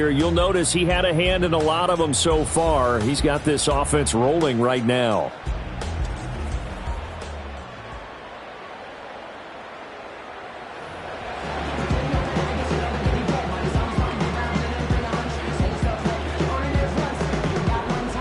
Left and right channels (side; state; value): both; identical; correlation 1.00